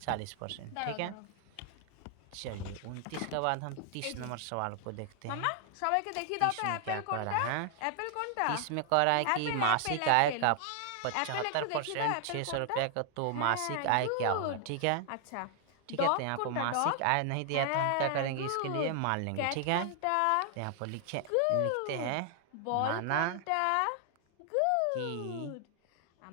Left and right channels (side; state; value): both; different; correlation 0.00